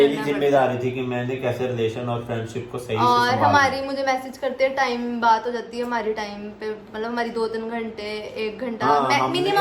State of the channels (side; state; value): both; identical; correlation 1.00